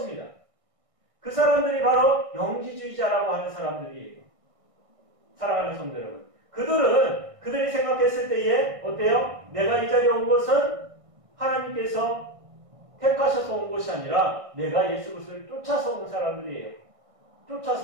그 사람들이 바로 영지주의자라고 하는 사람들이에요. 사랑하는 성도 여러분, 그들이 생각했을 때에 어때요? 내가 이 자리에 온 것은 하나님께서 택하셔서 온 것이 아니라 내가 예수 그리스도를 쫓아서 온 사람들이에요.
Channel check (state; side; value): late; left; 1.6 ms